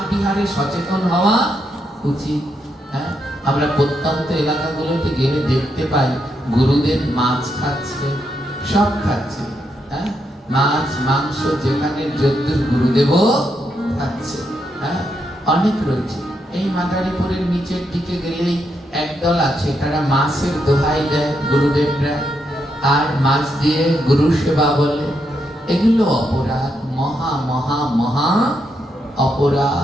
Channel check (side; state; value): both; normal; correlation 0.80